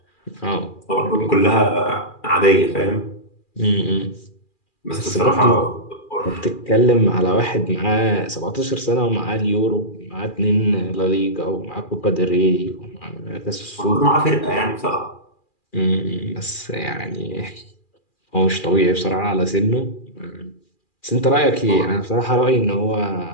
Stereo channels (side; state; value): right; late; 2.4 ms